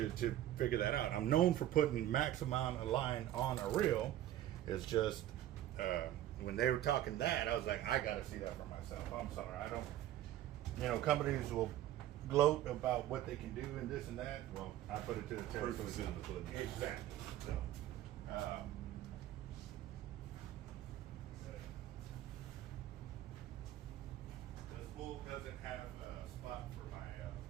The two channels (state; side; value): quieter; left; 13.0 dB